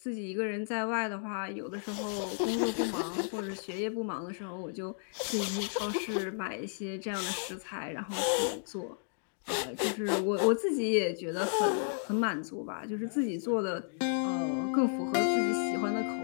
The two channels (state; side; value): silent; right; digital silence